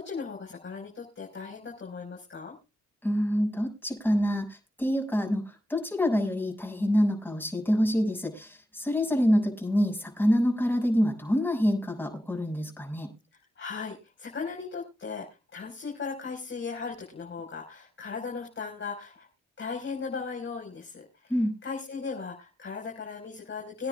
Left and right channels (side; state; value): both; normal; correlation 0.87